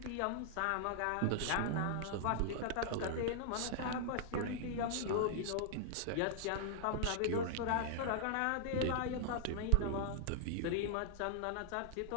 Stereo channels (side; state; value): both; different; correlation -0.01